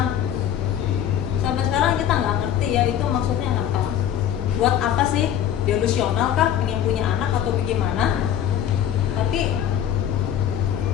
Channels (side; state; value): right; quieter; 10.1 dB